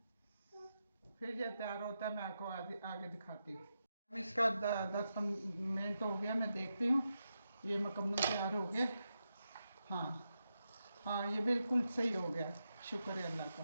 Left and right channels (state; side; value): inverted; both; correlation -0.87